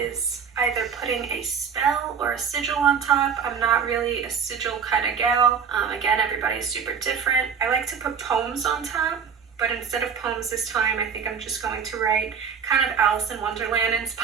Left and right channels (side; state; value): left; quieter; 6.8 dB